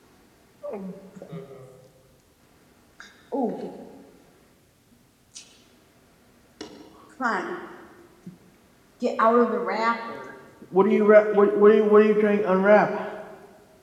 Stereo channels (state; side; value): identical; both; correlation 1.00